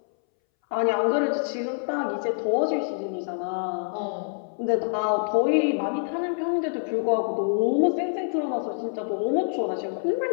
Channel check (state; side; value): silent; right; 61 dB below the other